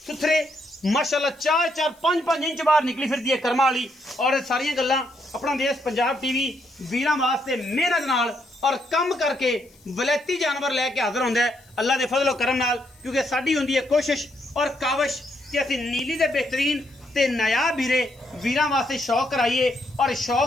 माशाल्लाह 4-4 5-5 इंच बाहर निकली फिरदी है कर्मा वाली। और सारियां गल्लां अपना देश पंजाब टीवी वीरां वास्ते मेहनत नाल और कम करके वलैती जानवर लैके हाजिर होंदा है अल्लाह दे फजलो करम नाल। क्योंकि साडी हुंदी है कोशिश और काविश कि असीं नीली दे बेहतरीन ते नायाब हीरे वीरां वास्ते शौक कराइए और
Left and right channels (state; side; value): noise; left; hiss, 30 dB below the sound